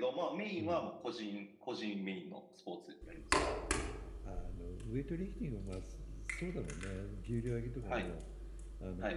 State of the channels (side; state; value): both; identical; correlation 1.00